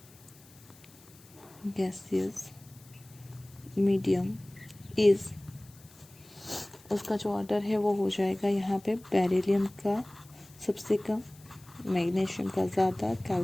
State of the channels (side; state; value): left; noise; hiss, 25 dB below the sound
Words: is, उसका जो order है वो हो जाएगा यहाँ पे बेरिलियम का सबसे कम, मैग्नीशियम का ज़्यादा,